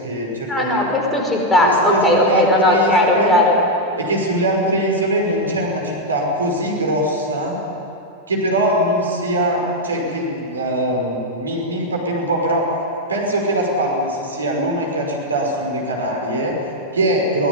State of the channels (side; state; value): both; normal; correlation 0.00